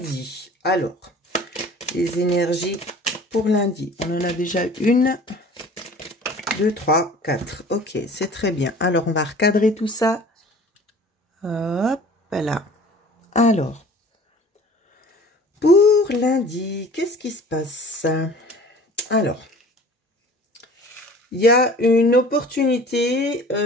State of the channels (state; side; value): normal; both; correlation 0.46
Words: Alors, les énergies pour lundi. On en a déjà une, deux, trois, quatre. Ok, c'est très bien. Alors, on va recadrer tout ça. Hop là. Alors, pour lundi, qu'est-ce qui se passe? Alors, il y a une opportunité